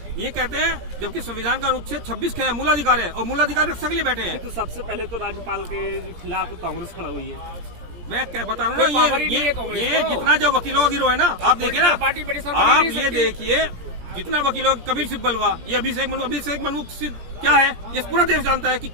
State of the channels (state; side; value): late; left; 17 ms